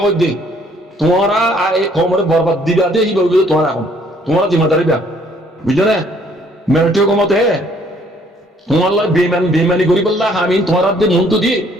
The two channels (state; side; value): normal; both; correlation 0.62